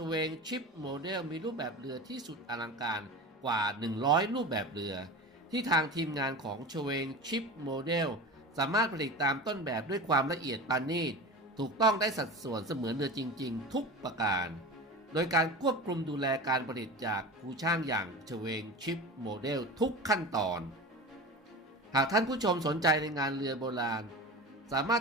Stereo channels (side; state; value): both; normal; correlation 0.30